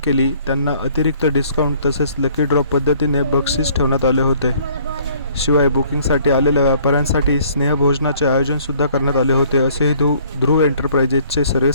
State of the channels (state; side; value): inverted; both; correlation -0.58